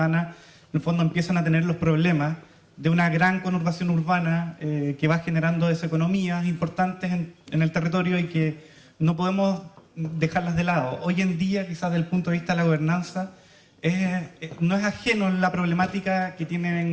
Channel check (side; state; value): both; identical; correlation 1.00